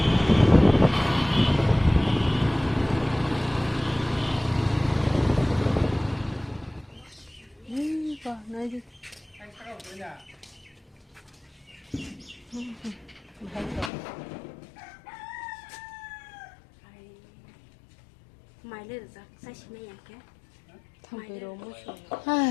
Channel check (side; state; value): right; drops out; at 13.9 s